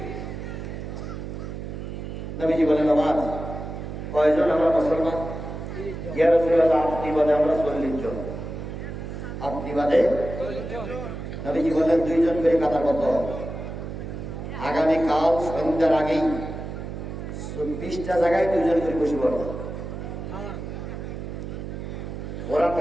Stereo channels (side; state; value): right; noise; hum, 7 dB below the sound